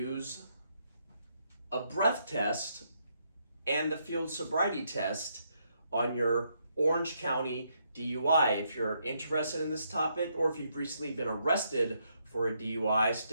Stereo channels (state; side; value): inverted; both; correlation -0.76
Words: a breath test and the field sobriety test on your Orange County DUI? If you're interested in this topic, or if you've recently been arrested for a DUI,